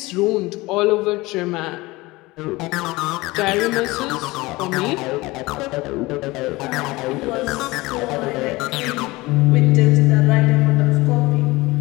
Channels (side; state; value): right; quieter; 21.2 dB